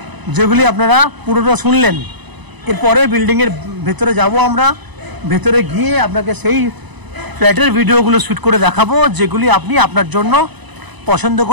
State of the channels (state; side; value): late; left; 1.0 ms